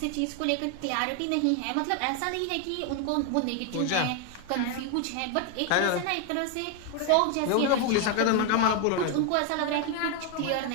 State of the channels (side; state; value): both; different; correlation 0.01